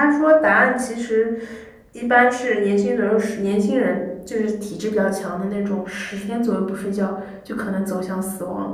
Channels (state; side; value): identical; both; correlation 1.00